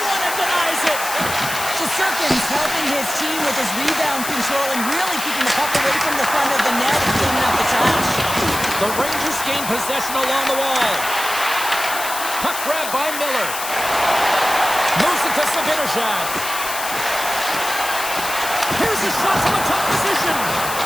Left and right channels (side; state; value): left; noise; hiss, 6 dB below the sound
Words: and denies it. Shesterkin's helping his team with his rebound control and really keeping the puck away from the front of the net and cleaning up the trash. The Rangers gain possession along the wall. Puck grab by Miller. Moves it to Sabinishad. Here's a shot from a tough position.